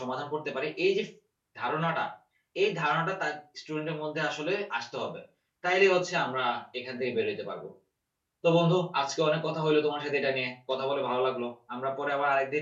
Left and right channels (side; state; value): both; identical; correlation 1.00